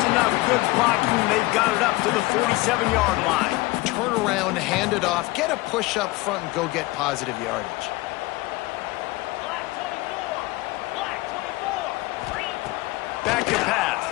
enough good blocking, and they've got it up to the 47-yard line. Turn around, hand it off, get a push up front, and go get positive yardage. Back to pass.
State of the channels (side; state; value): right; quieter; 21.0 dB